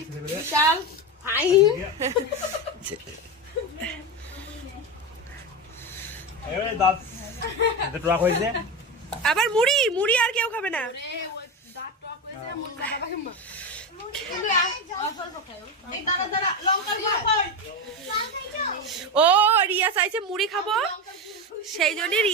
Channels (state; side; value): normal; both; correlation 0.17